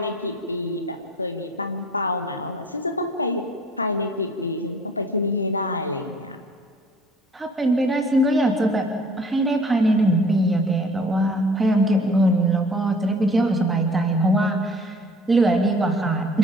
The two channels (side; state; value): both; normal; correlation 0.51